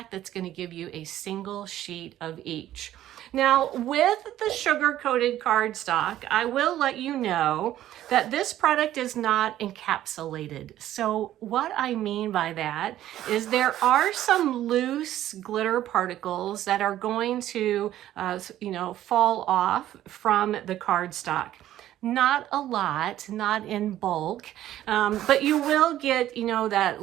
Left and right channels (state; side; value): quieter; left; 12.9 dB